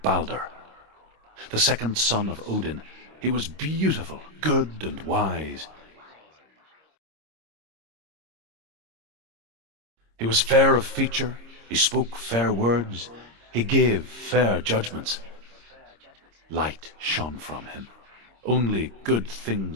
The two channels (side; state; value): left; late; 26 ms